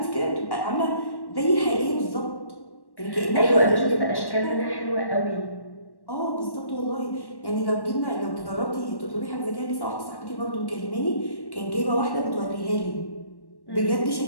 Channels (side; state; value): right; late; 1.1 ms